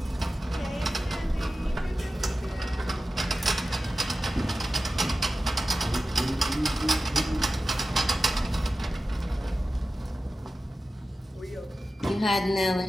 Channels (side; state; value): both; normal; correlation 0.94